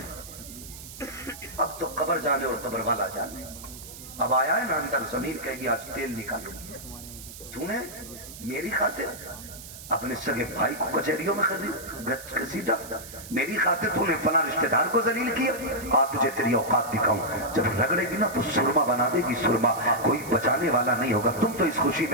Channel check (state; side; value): noise; right; hiss, 14 dB below the sound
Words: اب تو قبر جانے اور قبر والا جانے۔ اب آیا ہے نا اندر ضمیر کہے گی آج تیل نکالوں گی، تو نے میری خاطر اپنے سگے بھائی کو کچہریوں میں گھسیٹا، میری خاطر تو نے فلاں رشتہ دار کو ذلیل کیا، آ تجھے تیری اوقات دکھاؤں، جب رگڑے گی نا تو سرما بنا دے گی، سرما کوئی بچانے والا نہیں ہوگا۔ تم تو اس خوشی